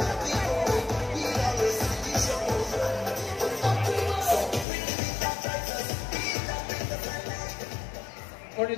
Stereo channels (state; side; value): drops out; right; at 4.7 s